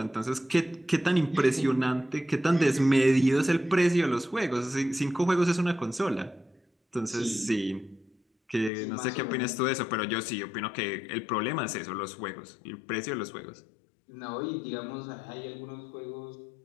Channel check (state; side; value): drops out; right; at 8.7 s